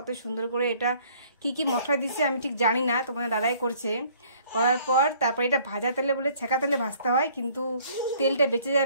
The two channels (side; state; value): both; inverted; correlation -0.58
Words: সুন্দর করে এটা কি কি মশলা দিচ্ছে আমি ঠিক জানি না, তোমাদের দাদাই করছে। করার পর তারপর এটা ভাজা তেলে বলে ছেঁকা তেলে ভাজতে হয়, কিন্তু তেলটা বেঁচে